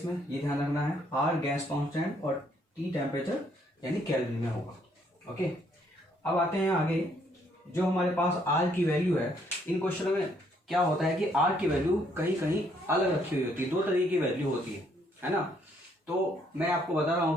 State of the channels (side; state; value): both; normal; correlation 0.68